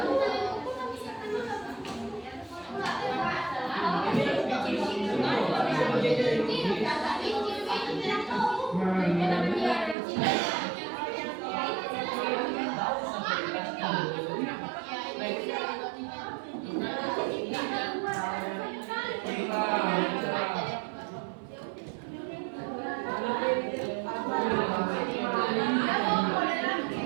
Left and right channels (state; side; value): drops out; left; at 10.0 s